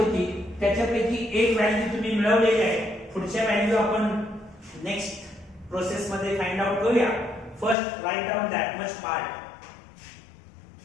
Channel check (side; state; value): right; drops out; at 7.8 s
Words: त्याच्यापैकी एक व्हॅल्यू तुम्ही मिळवलेली आहे. पुढच्या व्हॅल्यू आपण नेक्स्ट प्रोसेस मध्ये फाइंड आउट करूया. First right down that much part.